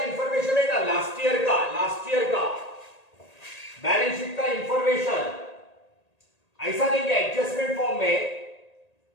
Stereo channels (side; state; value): right; late; 1.8 ms